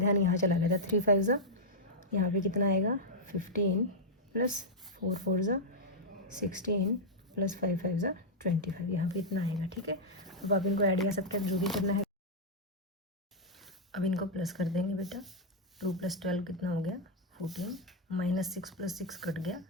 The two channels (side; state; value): both; normal; correlation -0.05